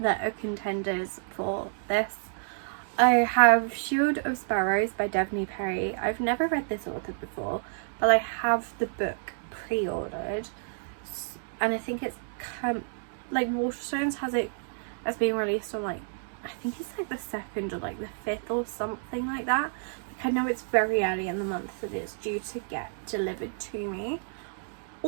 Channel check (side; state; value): left; silent; digital silence